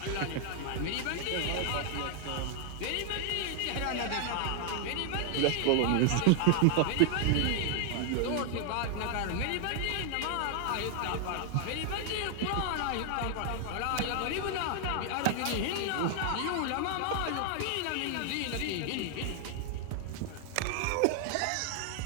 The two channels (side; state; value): both; different; correlation 0.00